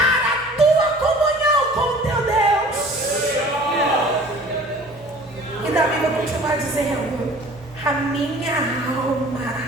a tua comunhão com o teu Deus. E Davi vai continuar dizendo: a minha alma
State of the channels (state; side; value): normal; both; correlation 0.47